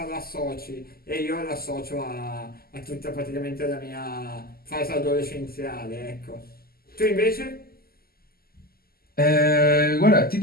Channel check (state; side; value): late; right; 0.44 ms